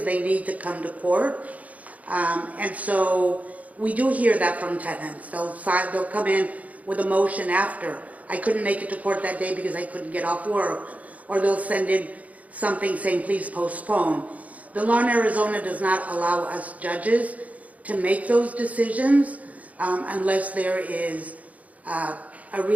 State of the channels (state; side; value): late; left; 0.071 ms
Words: they need to come to court. And so we do hear that from tenants. They'll come in with a motion after. I couldn't make it to court that day because I couldn't get off work. Or they'll send in something saying, please postpone. The law in Arizona does not allow us judges to make those decisions unless there is a